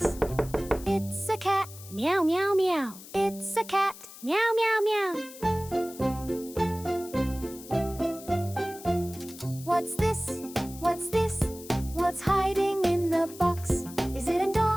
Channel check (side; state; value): left; noise; hiss, 16 dB below the sound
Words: It's a cat. Meow, meow, meow. It's a cat. Meow, meow, meow. What's this? What's this? What's hiding in the box? Is it a